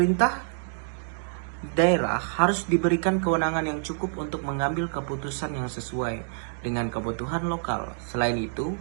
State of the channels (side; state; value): left; silent; digital silence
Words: daerah harus diberikan kewenangan yang cukup untuk mengambil keputusan yang sesuai dengan kebutuhan lokal. Selain itu,